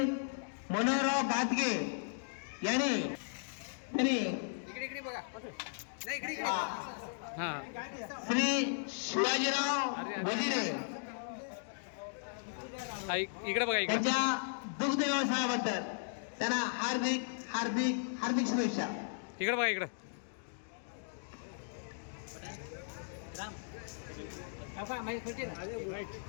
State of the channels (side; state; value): right; silent; digital silence